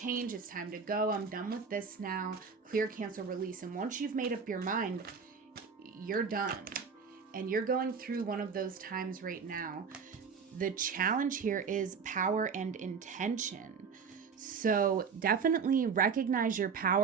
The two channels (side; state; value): left; quieter; 5.8 dB